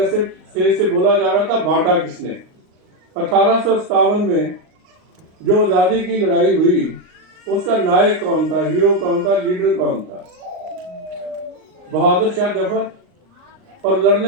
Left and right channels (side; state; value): left; late; 38 ms